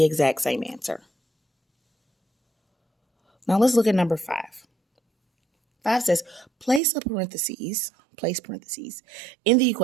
exact same answer. Now let's look at number 5. 5 says, place parentheses in the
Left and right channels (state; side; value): drops out; left; at 6.8 s